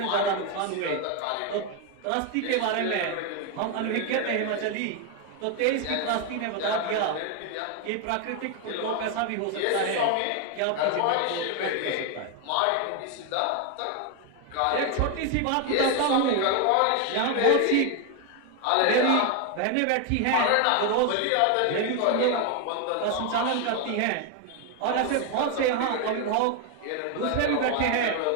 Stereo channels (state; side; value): different; both; correlation 0.01